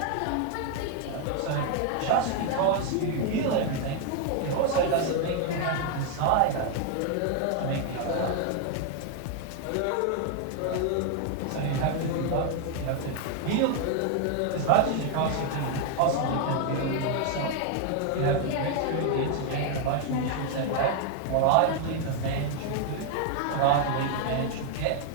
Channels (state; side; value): different; both; correlation 0.00